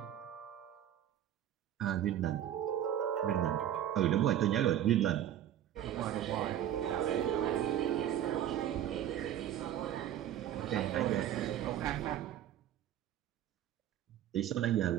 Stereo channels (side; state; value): left; quieter; 11.1 dB